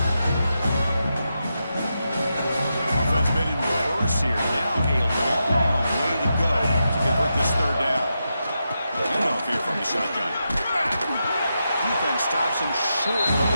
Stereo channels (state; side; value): inverted; both; correlation -0.87